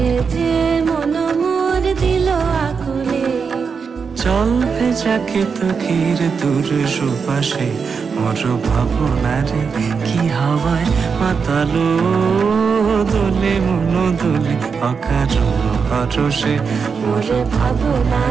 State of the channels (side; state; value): left; quieter; 5.7 dB